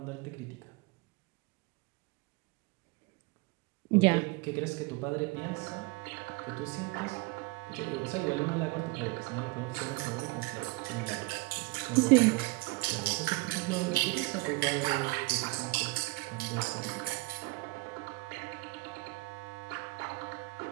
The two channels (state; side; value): quieter; left; 24.8 dB